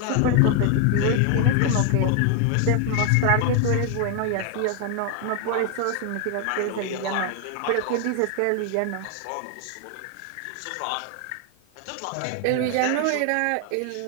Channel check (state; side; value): different; both; correlation 0.00